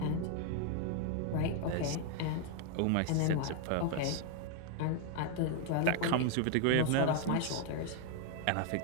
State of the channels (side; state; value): both; different; correlation 0.00